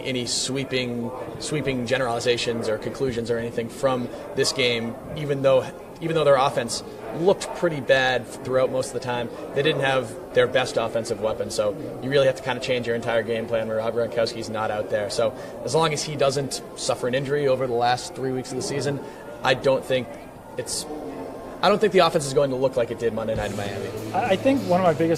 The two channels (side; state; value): both; identical; correlation 1.00